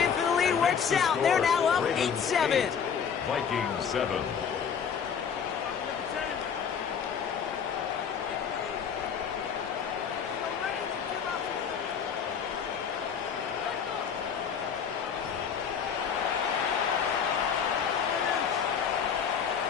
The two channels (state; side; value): quieter; right; 7.1 dB